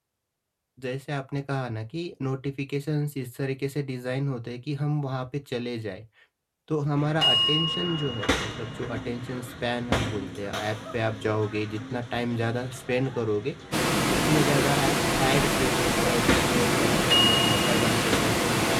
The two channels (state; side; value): identical; both; correlation 1.00